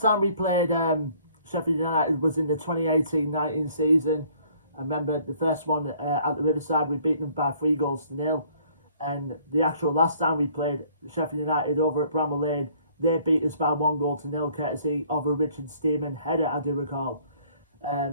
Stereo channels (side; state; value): both; inverted; correlation -0.60